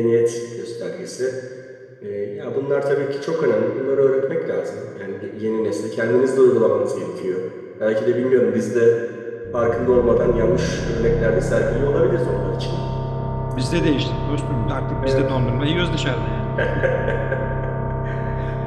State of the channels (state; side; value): identical; both; correlation 1.00